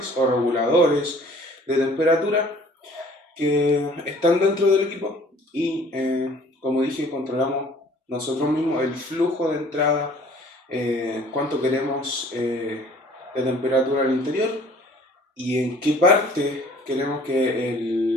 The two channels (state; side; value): normal; both; correlation 0.53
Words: o reguladores de temperatura que están dentro del equipo y, como dije, controlamos nosotros mismos el flujo de entrada, cuánto queremos de temperatura al interior y en qué parte queremos que